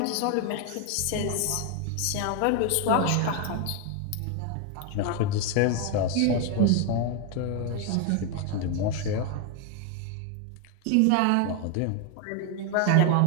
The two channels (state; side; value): different; both; correlation 0.01